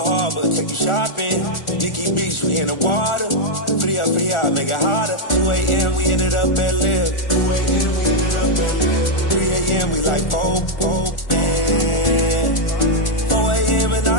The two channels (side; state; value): right; late; 1.4 ms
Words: Harbor, take you shopping. Nikki Beach, we in the water. Free up, make it hotter. 2 a.m., we ended up at Live. 3 a.m., we like Pope. 4 a.m. and